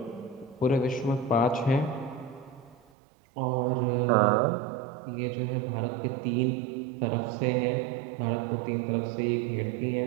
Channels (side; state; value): left; drops out; at 2.8 s